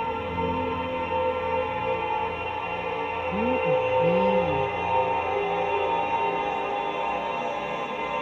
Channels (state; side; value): identical; both; correlation 1.00